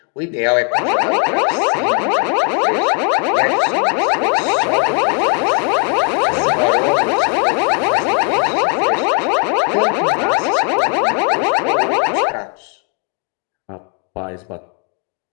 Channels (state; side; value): quieter; right; 38.0 dB